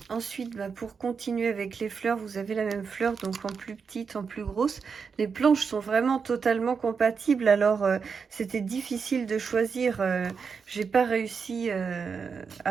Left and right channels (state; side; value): quieter; left; 5.8 dB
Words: Ensuite, pour continuer avec les fleurs, vous avez la même fleur, donc en plus petite, en plus grosse. Les planches sont vraiment totalement compatibles, alors c'était difficile de choisir. J'ai pas réussi